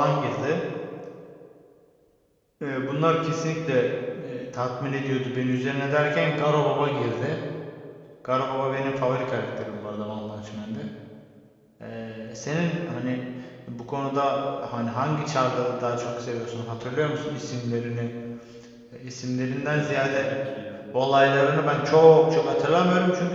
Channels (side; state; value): both; identical; correlation 1.00